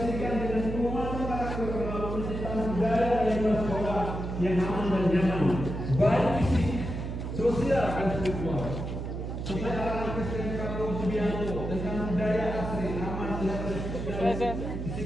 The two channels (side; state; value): right; noise; hum, 5 dB below the sound